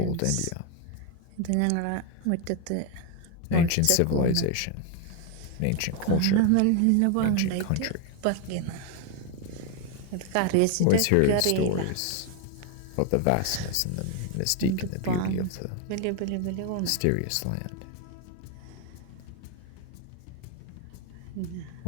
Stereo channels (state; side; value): different; both; correlation 0.01